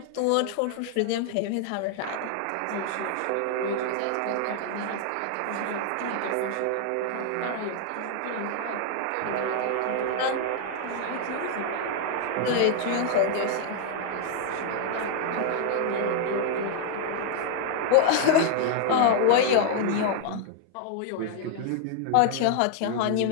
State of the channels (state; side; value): different; both; correlation 0.00